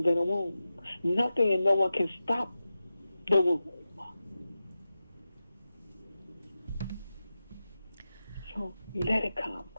than a womb. Nothing and no one can stop the womb. So let it come.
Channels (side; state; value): both; inverted; correlation -0.92